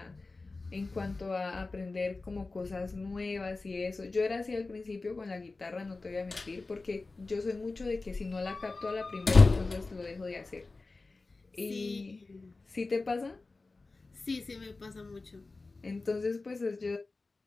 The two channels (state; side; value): quieter; right; 3.6 dB